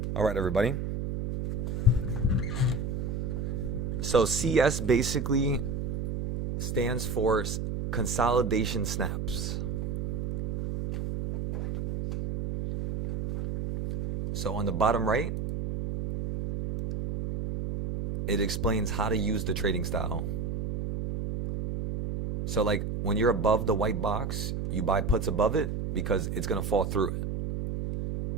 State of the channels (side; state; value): right; noise; hum, 3 dB below the sound